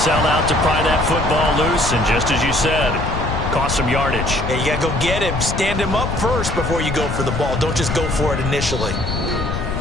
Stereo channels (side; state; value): left; noise; rumble, 3 dB below the sound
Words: out to pry that football loose, and just as you said, cost some yardage. Yeah, you got to go get him. Stand him up first before you go for the ball. Don't just go for it initially.